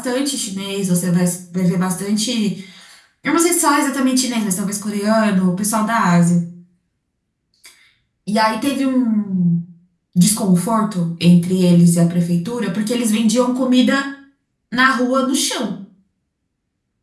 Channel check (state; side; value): identical; both; correlation 1.00